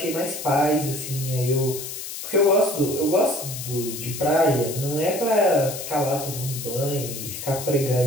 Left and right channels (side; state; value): left; noise; hiss, 8 dB below the sound